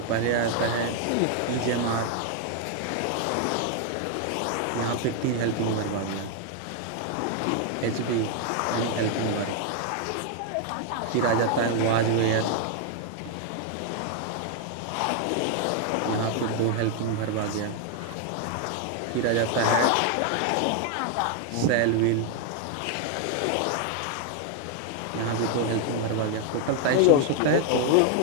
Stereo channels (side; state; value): both; different; correlation 0.00